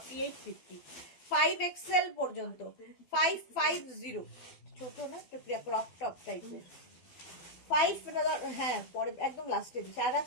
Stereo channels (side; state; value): right; late; 12 ms